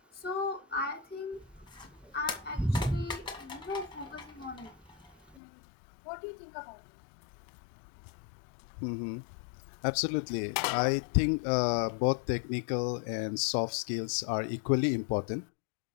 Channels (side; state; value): right; drops out; at 5.4 s